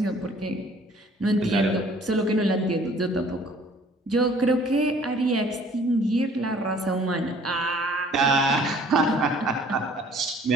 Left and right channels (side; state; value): both; normal; correlation 0.55